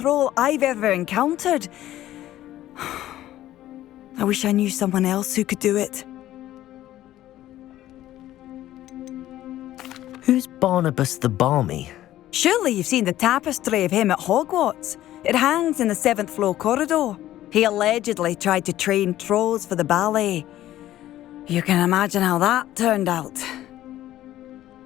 I've ever encountered. I wish I knew someone else who could do it. Who's Barnabas the Barmy? Surely you've seen the tapestry of him at Hogwarts. It hangs in the 7th floor corridor. He allegedly tried to train trolls for the ballet. You can imagine how that turned out.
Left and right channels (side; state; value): right; quieter; 13.8 dB